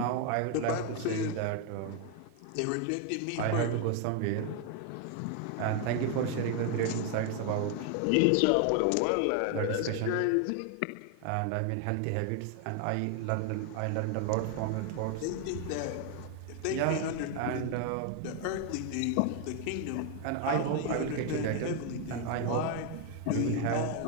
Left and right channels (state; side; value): different; both; correlation 0.01